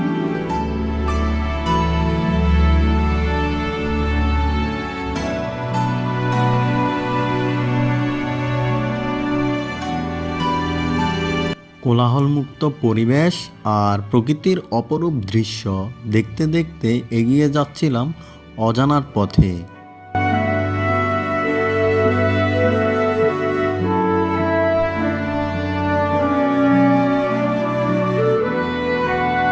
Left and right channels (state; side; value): identical; both; correlation 1.00